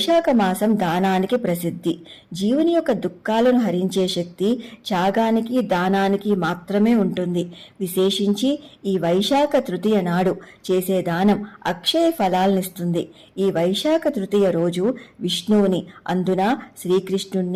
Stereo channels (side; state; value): both; identical; correlation 1.00